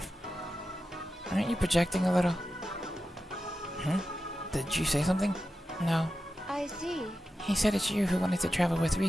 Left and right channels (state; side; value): normal; both; correlation 0.91